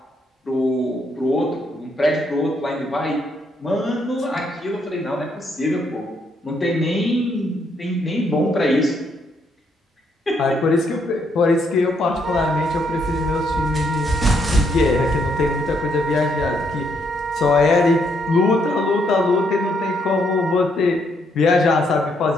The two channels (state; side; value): normal; both; correlation 0.74